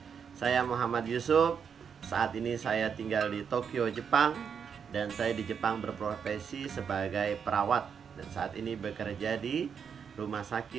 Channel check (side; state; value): left; quieter; 6.9 dB